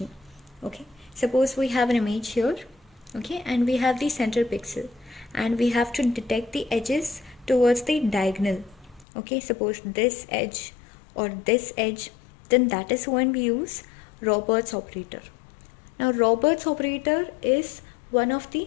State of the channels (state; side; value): drops out; right; at 9.1 s